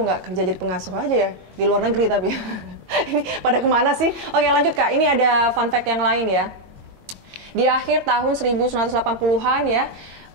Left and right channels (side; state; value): left; late; 22 ms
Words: nggak kerja jadi pengasuh aja ya di luar negeri tapi. Ini pada kemana sih? Oke lanjut Kak, ini ada fun fact yang lain ya. Di akhir tahun 1980-an ya,